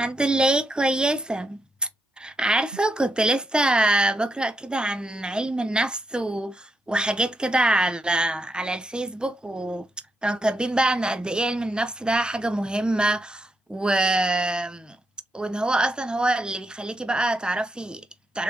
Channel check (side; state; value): both; normal; correlation 0.81